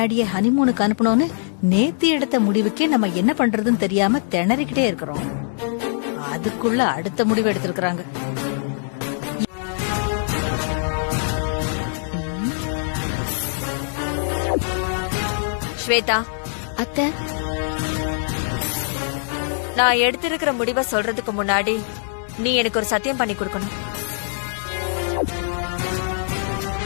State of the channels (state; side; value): silent; right; digital silence